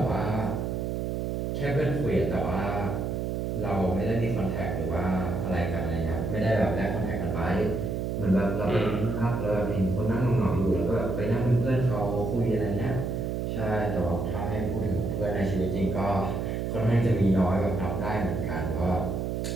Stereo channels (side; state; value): right; noise; hum, 1 dB below the sound